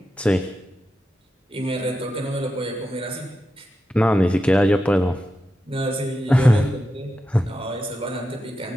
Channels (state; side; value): normal; both; correlation 0.89